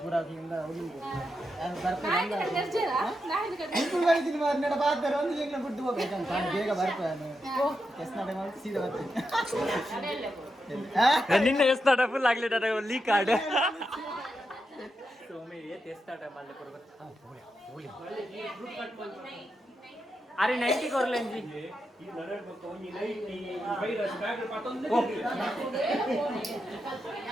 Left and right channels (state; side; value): normal; both; correlation 0.86